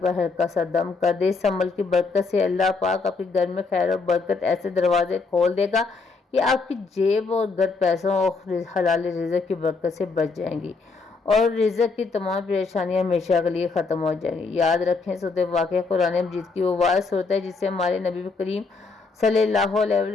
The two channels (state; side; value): quieter; right; 4.3 dB